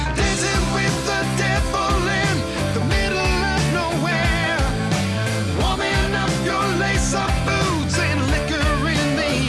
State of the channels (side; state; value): both; identical; correlation 1.00